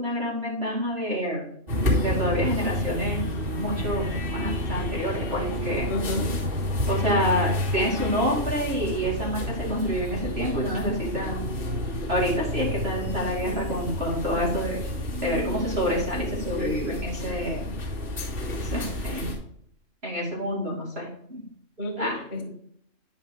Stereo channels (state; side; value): late; left; 3.0 ms